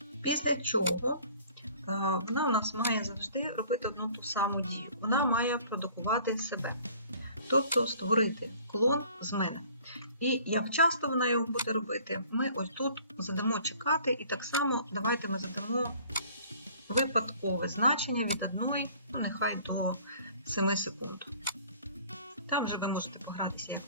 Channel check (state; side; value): inverted; both; correlation -0.53